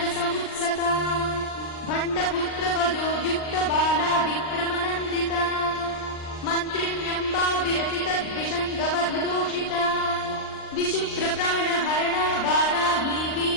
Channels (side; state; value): right; late; 39 ms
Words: भण्डपुत्रवधोद्युक्तबाला विक्रमनन्दिता मन्त्रिण्यम्बा विरचितद्विषङ्गवधदोषिता विशुक्रप्राणहरणा बालाही